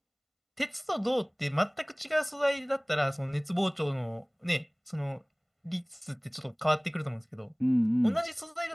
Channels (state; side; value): identical; both; correlation 1.00